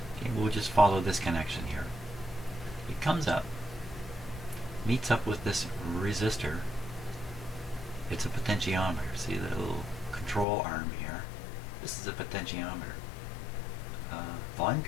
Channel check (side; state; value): right; drops out; at 10.5 s